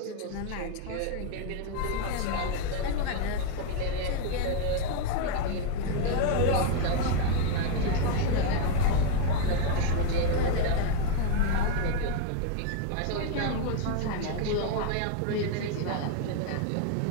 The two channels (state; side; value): different; both; correlation 0.01